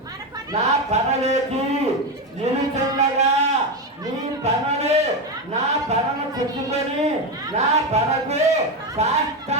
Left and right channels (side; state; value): both; normal; correlation 0.13